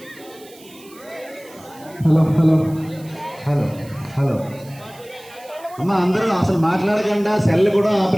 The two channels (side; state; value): right; noise; hiss, 23 dB below the sound